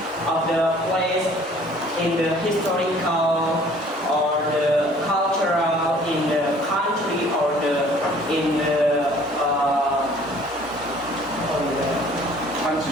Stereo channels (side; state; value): both; normal; correlation 0.54